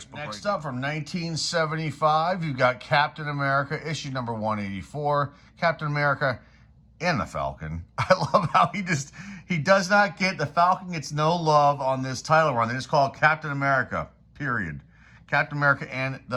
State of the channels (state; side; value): identical; both; correlation 1.00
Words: book. Next up, from 1975, you've got Captain America, issue number 184. Captain America and the Falcon. I love how he does not get, the Falcon gets no love on this title run. They just call it Captain America, period. Captain America and